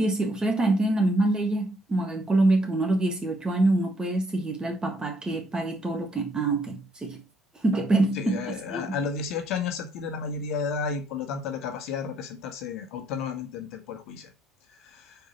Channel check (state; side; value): normal; both; correlation 0.69